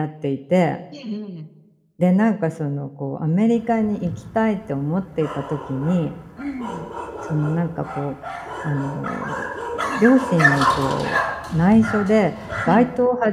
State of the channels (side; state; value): both; identical; correlation 1.00